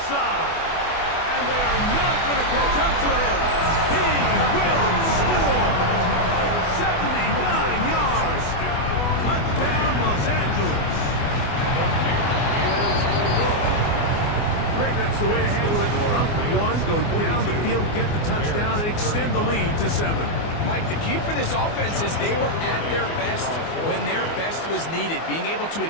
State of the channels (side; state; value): right; late; 24 ms